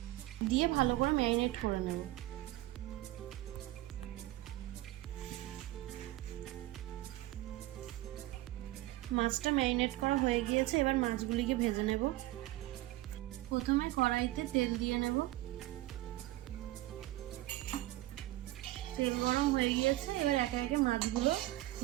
দিয়ে ভালো করে ম্যারিনেট করে নেব। মাছটা ম্যারিনেট করা হয়ে গিয়েছে, এবার মাছগুলিকে ভেজে নেব। প্রথমে কড়াইতে তেল দিয়ে নেব। তেল গরম হয়ে গিয়েছে, এবার একে একে মাছগুলো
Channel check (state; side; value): quieter; left; 16.9 dB